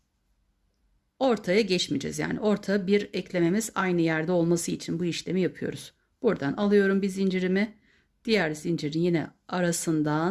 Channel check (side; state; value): both; identical; correlation 1.00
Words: Ortaya geçmeyeceğiz. Yani orta bir eklememiz aynı yerde olması için bu işlemi yapıyoruz. Buradan alıyorum bir zincirimi. Diğer zincirin yine